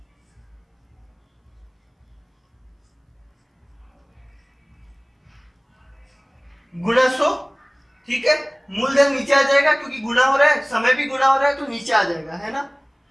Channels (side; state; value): both; identical; correlation 1.00